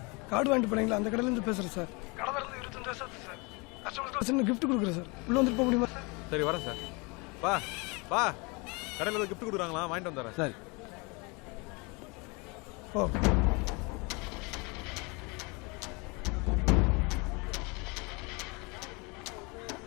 கார்டு வாங்கிட்டு போனீங்களா? அந்த கடையிலேருந்து பேசுகிறேன் சார். கடை இருந்து 25 வருஷம் சார். கஸ்டமருக்கு கிஃப்ட் கொடுக்குறேன் சார். உள்ளே வந்துட்டு போக முடியுமா சார்? சரி வரேன் சார். வா கடையில் ஏதோ கிஃப்ட் கொடுக்குறாங்களா, வாங்கிட்டு வந்துடுறேன். சரி. ஓ,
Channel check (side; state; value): right; quieter; 28.8 dB